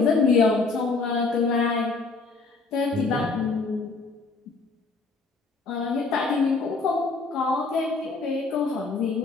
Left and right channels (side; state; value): right; quieter; 4.0 dB